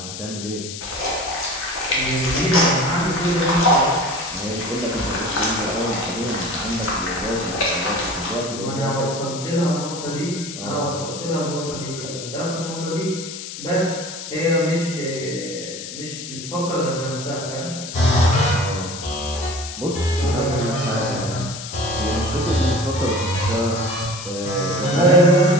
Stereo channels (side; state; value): left; noise; hiss, 9 dB below the sound